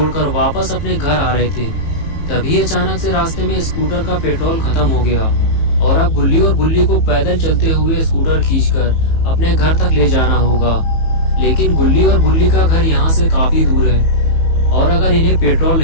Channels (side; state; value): right; late; 18 ms